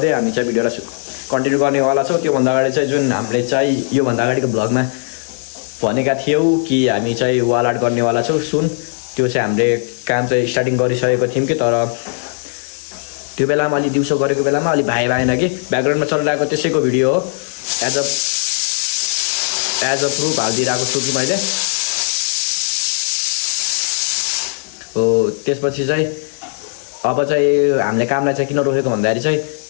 हामी चाहिँ भिडियोलाई कन्टिन्यू गर्नेवाला छौँ। त्योभन्दा अगाडि चाहिँ जुन हामीले चाहिँ योभन्दा अगाडिको ब्लगमा भनेका थियौँ कि हामी चाहिँ वाल आर्ट गर्नेवाला छौँ सुन, त्यो चाहिँ हामीले काम चाहिँ स्टार्टिङ गरिसकेको थियौँ कि, तर त्यो बेलामा अलि दिउँसो गरेको बेलामा अलि भएन कि ब्याकग्राउन्डमा चलिरहेको त्यसैको भिडियो हो। एज अ प्रुफ हालिदिइरहेको छु कि मैले हो। त्यसपछि चाहिँ अब चाहिँ हामीले कामलाई चाहिँ किन रोकेको भन्दाखेरि चाहिँ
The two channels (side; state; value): right; silent; digital silence